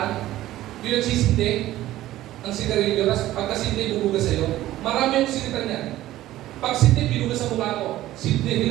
yung nagsisindi ng sigarilyo, pagkasindi, bubuga sa'yo. Marami yung sinita niyan. Pag sindi, binuga sa mukha ko. Sindi,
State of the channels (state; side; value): quieter; left; 14.9 dB